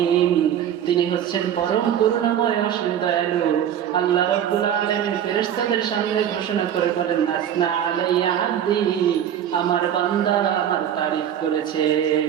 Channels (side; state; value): left; quieter; 9.8 dB